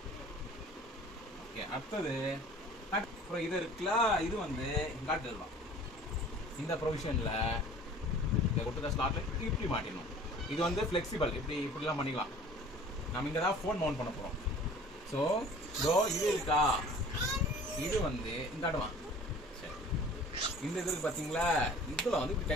ஓகே அடுத்தது அப்புறம் இது இருக்குல்ல, இது வந்து காட்டு தருவான். இந்த ப்ரொவிஷன்ல இந்த கொடுத்த ஸ்லாட்ல இப்படி மாட்டிடணும். இது வந்து ஃபிளெக்சிபிள். இப்படிலாம் பண்ணிக்கலாம். நம்ம இங்க தான் ஃபோன் மவுண்ட் பண்ண போறோம். ஸோ இதோ இது இருக்கா, இது வந்து இந்த அடுவான். சரி இந்த இது இருக்கு பார்த்தீங்களா, இதில் வந்து இப்படி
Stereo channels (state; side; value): normal; both; correlation 0.47